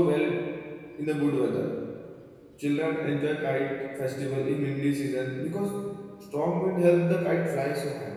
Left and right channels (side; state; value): both; identical; correlation 1.00